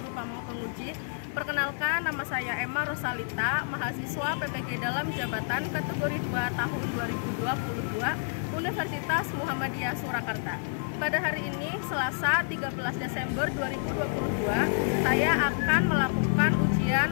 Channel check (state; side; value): silent; right; digital silence